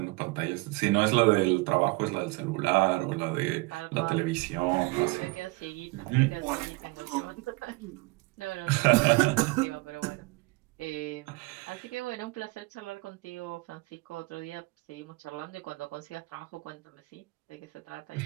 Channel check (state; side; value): quieter; left; 24.7 dB